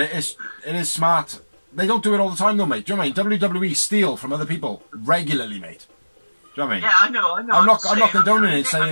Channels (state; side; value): inverted; both; correlation -1.00